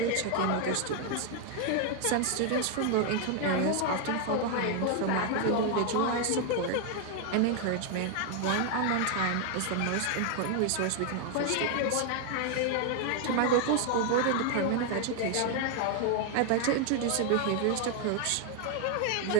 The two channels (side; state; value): both; different; correlation 0.00